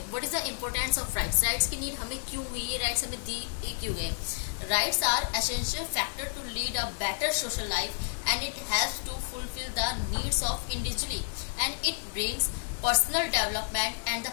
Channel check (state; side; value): silent; right; digital silence